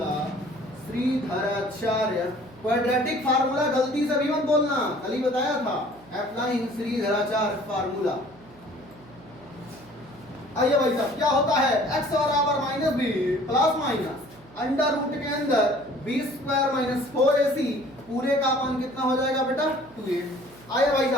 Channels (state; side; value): noise; right; hum, 24 dB below the sound